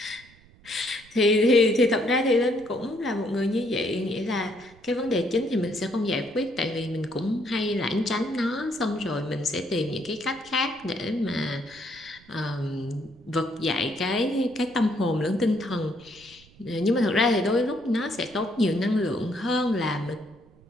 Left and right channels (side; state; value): right; noise; rumble, 26 dB below the sound